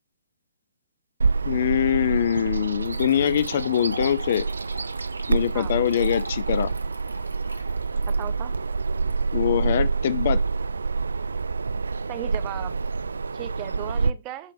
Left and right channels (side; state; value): both; inverted; correlation -0.72